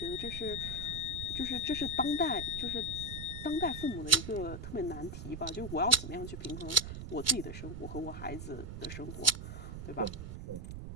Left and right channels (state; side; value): noise; right; rumble, 8 dB below the sound